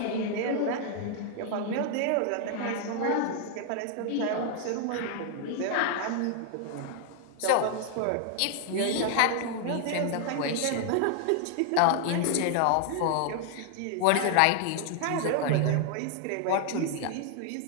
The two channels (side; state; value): both; different; correlation 0.00